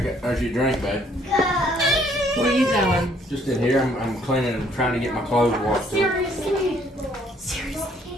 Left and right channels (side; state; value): both; normal; correlation 0.64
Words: There's your drink, bud. What are you doing? Just in here, I'm cleaning and trying to get my clothes washed. Seriously.